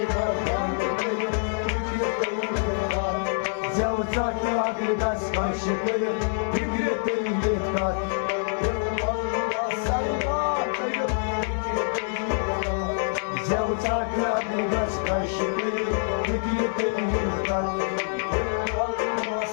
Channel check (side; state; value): right; silent; digital silence